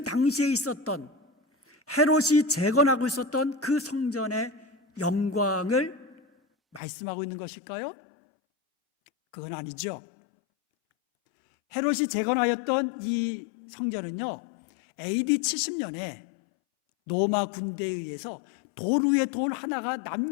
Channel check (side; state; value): right; drops out; at 6.8 s